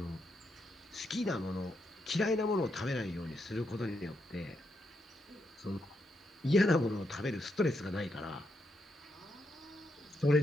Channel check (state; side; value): normal; both; correlation 0.81